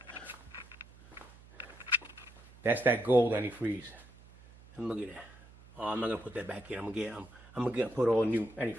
That's that gold antifreeze. And look at that. Oh, I'm not gonna put that back in. I'm gonna put all new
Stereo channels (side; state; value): right; noise; hum, 22 dB below the sound